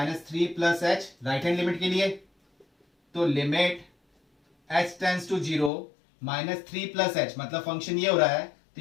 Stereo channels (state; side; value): drops out; right; at 5.7 s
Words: plus h, right hand limit के लिए। तो limit h tends to 0 -3 plus h, मतलब फंक्शन ये हो रहा है, तो